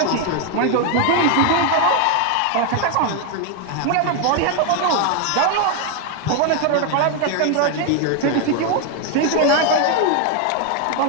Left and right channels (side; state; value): both; different; correlation 0.01